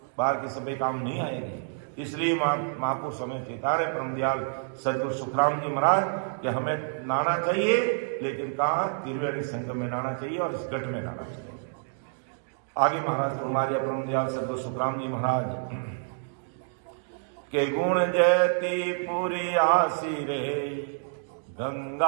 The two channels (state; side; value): silent; left; digital silence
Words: बाहर की सफाई काम नहीं आएगी। इसलिए महापुरुष हमें चेतारे परम दयाल सदगुरु सुखराम जी महाराज कि हमें नहाना चाहिए, लेकिन कहाँ, त्रिवेणी संगम में नहाना चाहिए और इस घट में नहाना चाहिए। आगे महाराज हमारे परम दयाल सदगुरु सुखराम जी महाराज के गुण जयती पूरी आसी रे,